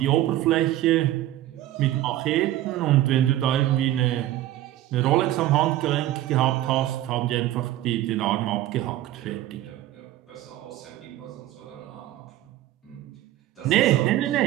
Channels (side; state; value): left; quieter; 14.2 dB